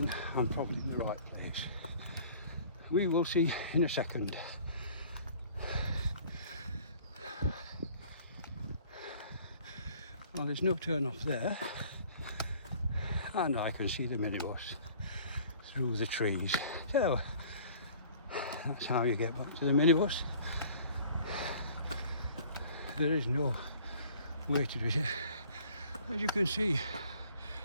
I'm probably in the right place. We will see in a second. Well, there's no turn off there, and I can see the minibus through the trees. So that's how you get back to the minibus. There is no way to do it. As you can see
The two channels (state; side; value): inverted; both; correlation -0.52